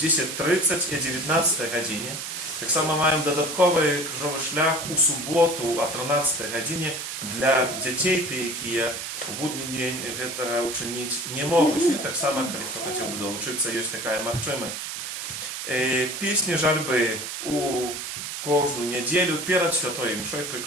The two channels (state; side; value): noise; right; hiss, 6 dB below the sound